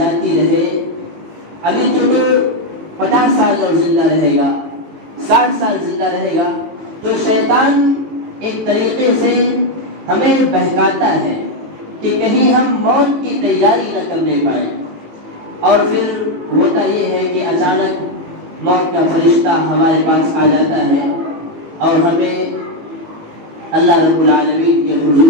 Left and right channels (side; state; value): left; late; 18 ms